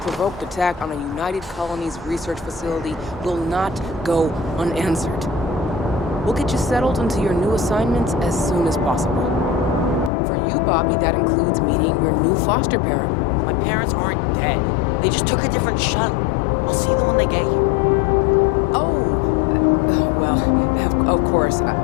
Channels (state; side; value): drops out; right; at 10.1 s